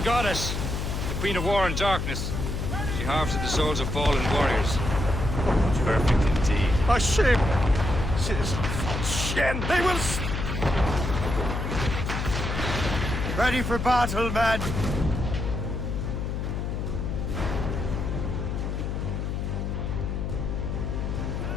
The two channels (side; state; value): left; noise; hum, 2 dB below the sound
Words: goddess, the queen of war and darkness. She harvests the souls of fallen warriors. Perfect indeed. A ship! Citizen von Shen, they will... Ready for battle, men!